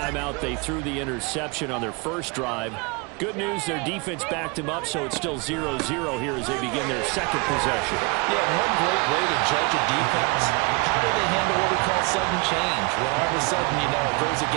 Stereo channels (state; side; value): quieter; left; 29.1 dB